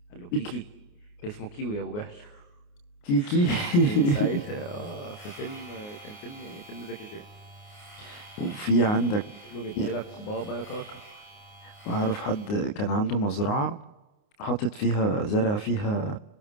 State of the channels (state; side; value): late; right; 29 ms